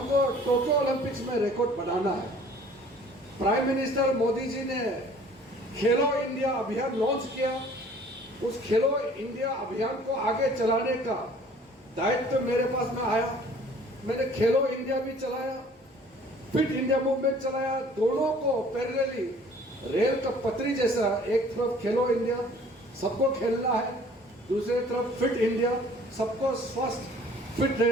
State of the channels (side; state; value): both; normal; correlation 0.52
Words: टोक्यो ओलंपिक्स में रिकॉर्ड बनाना है। प्राइम मिनिस्टर मोदी जी ने खेलो इंडिया अभियान लॉन्च किया। उस खेलो इंडिया अभियान को आगे चलाने का दायित्व मेरे पास में आया। मैंने खेलो इंडिया भी चलाया, फिट इंडिया मूवमेंट चलाया, दोनों को पैरेलली रेल का पटरी जैसा, एक तरफ खेलो इंडिया, सबको खेलना है, दूसरी तरफ फिट इंडिया, सबको स्वस्थ फिट